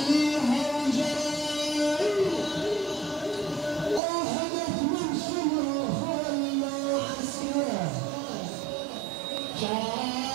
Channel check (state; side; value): drops out; left; at 4.0 s